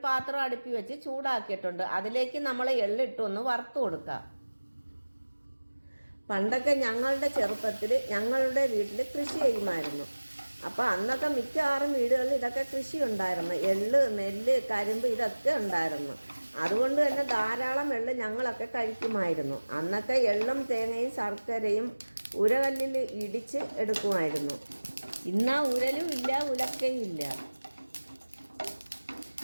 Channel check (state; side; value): inverted; both; correlation -1.00